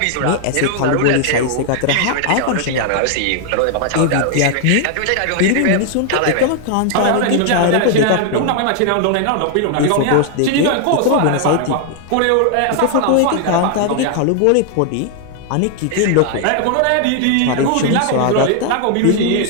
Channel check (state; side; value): different; both; correlation 0.00